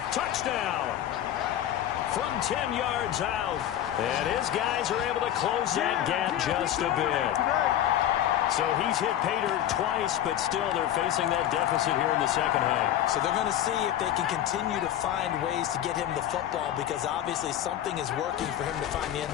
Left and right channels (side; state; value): right; quieter; 11.5 dB